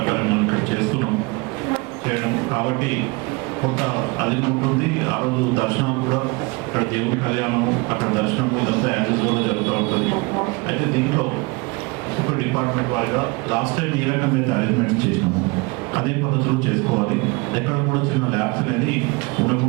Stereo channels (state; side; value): quieter; left; 26.8 dB